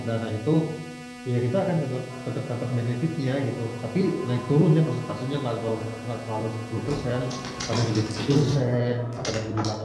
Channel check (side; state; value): both; identical; correlation 1.00